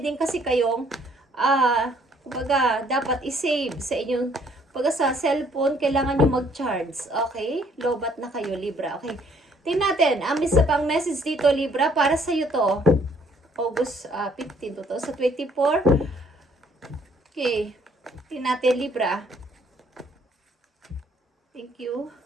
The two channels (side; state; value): both; normal; correlation 0.63